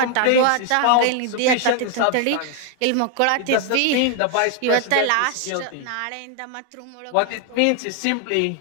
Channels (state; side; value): different; both; correlation 0.00